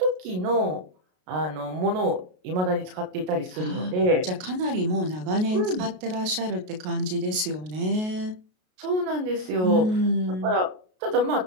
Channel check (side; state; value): left; late; 33 ms